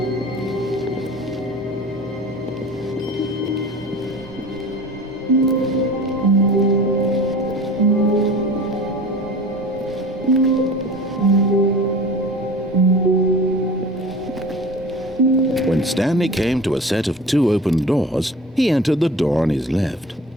When Stanley came to a set of 2 open doors, he entered the door on his left.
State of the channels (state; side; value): normal; both; correlation 0.38